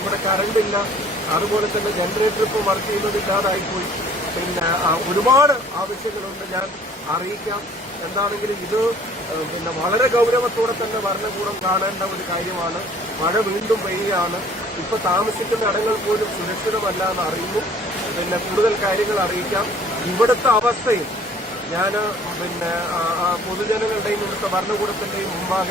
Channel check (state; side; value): normal; both; correlation 0.54